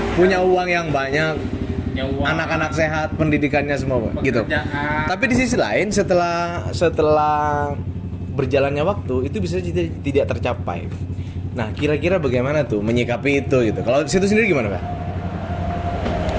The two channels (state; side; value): identical; both; correlation 1.00